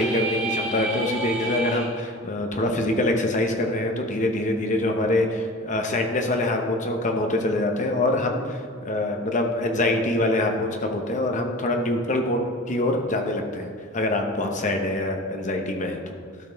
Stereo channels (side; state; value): both; normal; correlation 0.37